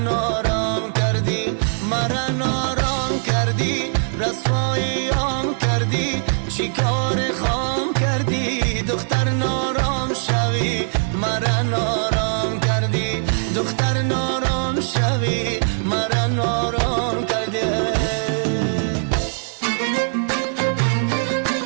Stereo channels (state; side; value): silent; left; digital silence